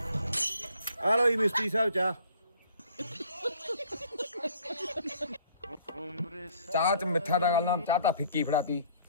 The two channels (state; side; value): inverted; both; correlation -0.57